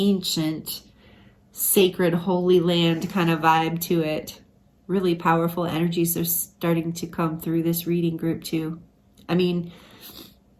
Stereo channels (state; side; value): identical; both; correlation 1.00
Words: sacred, holy land kind of vibe to it. Really powerful energies are starting to come through this reading, group 2. I mean,